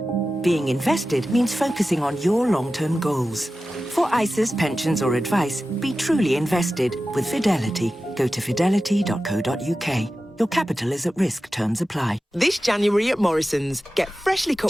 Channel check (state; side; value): normal; both; correlation 0.94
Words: Being invested means focusing on your long-term goals. For ISAs, pensions, or advice, be truly invested with Fidelity. Go to fidelity.co.uk. Your capital is at risk. Terms apply. This January at Morrison's, get freshly